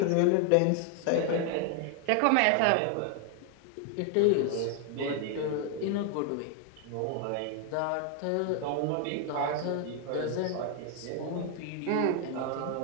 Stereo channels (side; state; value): both; different; correlation 0.00